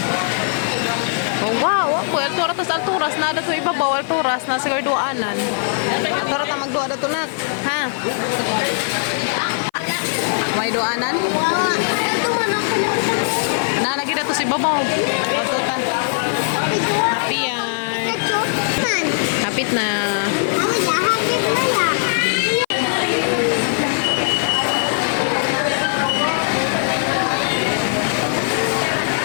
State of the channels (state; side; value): silent; right; 56 dB below the other